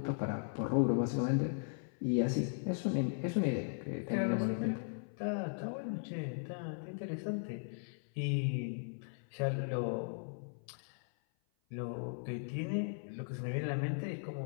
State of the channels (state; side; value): silent; right; 53 dB below the other